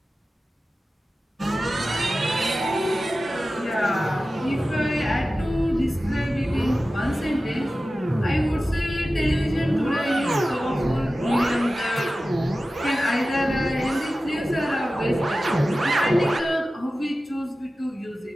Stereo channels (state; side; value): normal; both; correlation 0.95